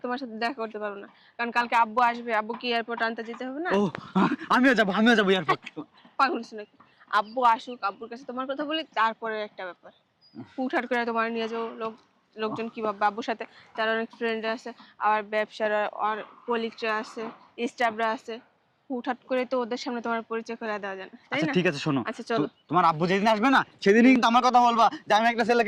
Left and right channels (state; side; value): identical; both; correlation 1.00